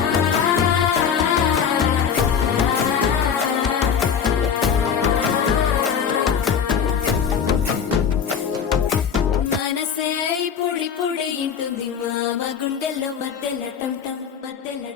పొడి పొడి ఇంటుంది మామ గుండెల్లో మధ్యల టం మధ్యల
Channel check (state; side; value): quieter; right; 7.2 dB